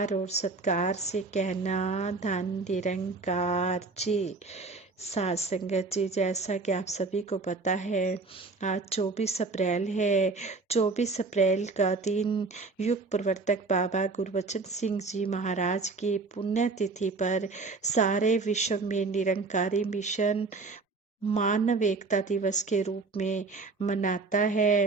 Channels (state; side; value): quieter; left; 3.9 dB